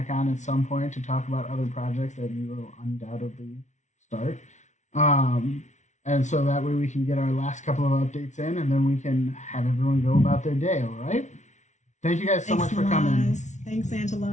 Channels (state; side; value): late; right; 0.35 ms